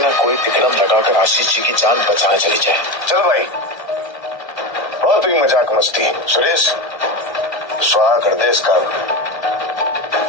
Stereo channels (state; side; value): late; right; 1.3 ms